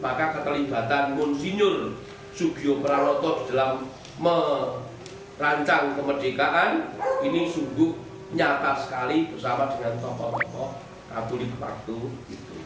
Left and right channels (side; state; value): both; identical; correlation 1.00